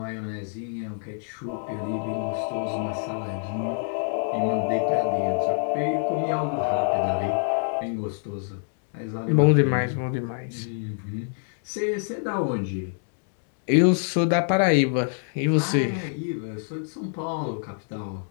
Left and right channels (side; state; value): right; silent; digital silence